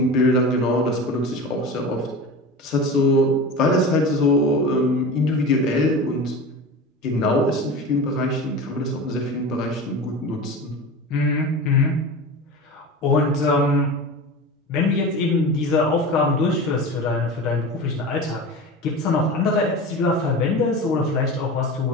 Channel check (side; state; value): both; normal; correlation 0.30